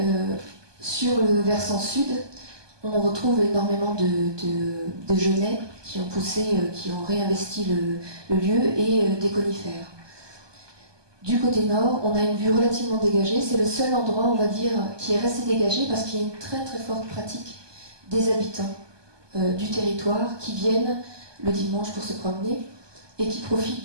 sur le versant sud, on retrouve énormément de genêts qui ont poussé, qui ont réinvesti le lieu, et des conifères. Du côté nord, on a une vue relativement dégagée. C'est le seul endroit, on va dire, qui est resté dégagé parce qu'il y a une très très forte pratique des habitants du territoire qui viennent le dimanche pour se promener et qui profitent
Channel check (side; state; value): left; late; 1.2 ms